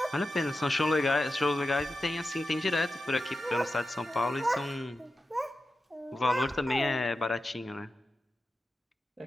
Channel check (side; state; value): both; normal; correlation 0.92